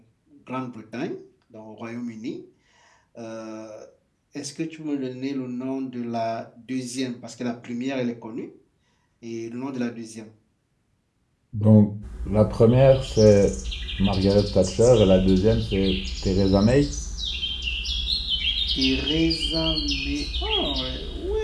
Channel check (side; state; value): both; identical; correlation 1.00